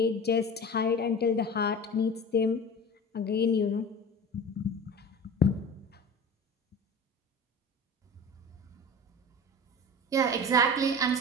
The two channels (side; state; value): both; normal; correlation 0.35